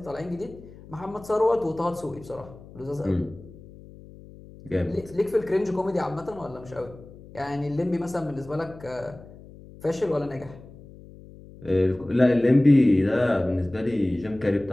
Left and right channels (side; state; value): left; noise; hum, 19 dB below the sound